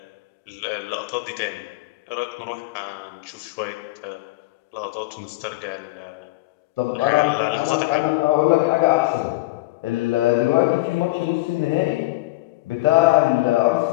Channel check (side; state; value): right; quieter; 20.0 dB